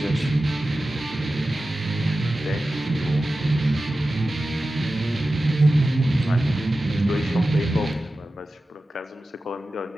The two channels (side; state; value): both; normal; correlation 0.94